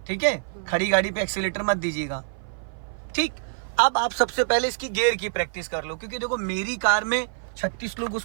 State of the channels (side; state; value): left; silent; 55 dB below the other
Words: ठीक है। खड़ी गाड़ी पे एक्सीलेटर मत दीजिएगा, ठीक। अब आप सबसे पहले इसकी गियर की प्रैक्टिस कर लो, क्योंकि देखो मेरी कार में 36 लोग